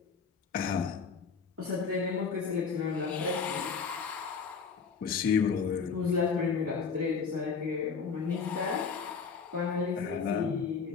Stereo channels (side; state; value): right; quieter; 5.6 dB